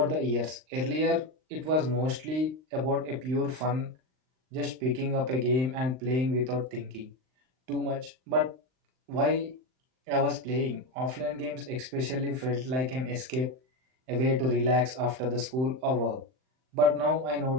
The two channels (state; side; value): late; left; 39 ms